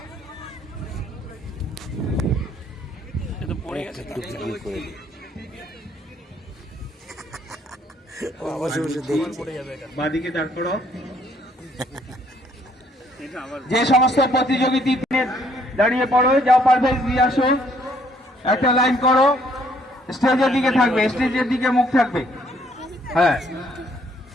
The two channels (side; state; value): both; normal; correlation 0.65